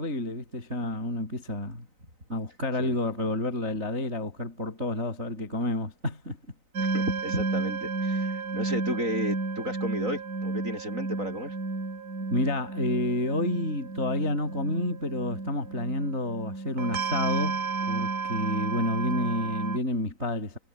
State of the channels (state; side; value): late; left; 3.9 ms